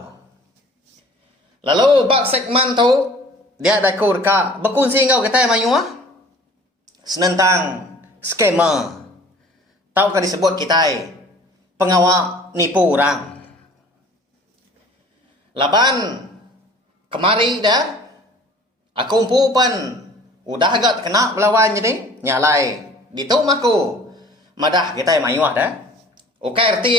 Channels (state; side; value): normal; both; correlation 0.48